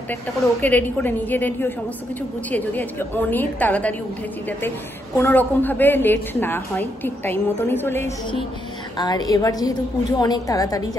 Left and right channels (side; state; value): both; normal; correlation 0.78